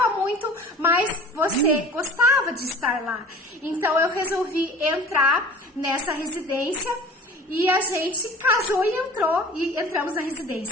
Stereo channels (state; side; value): normal; both; correlation 0.42